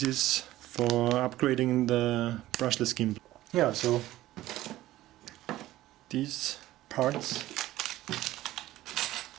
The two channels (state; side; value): quieter; left; 15.5 dB